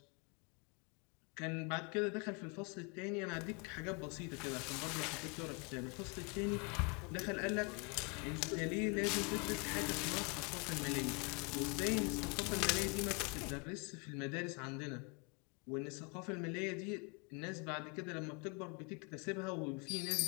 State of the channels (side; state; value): right; quieter; 32.5 dB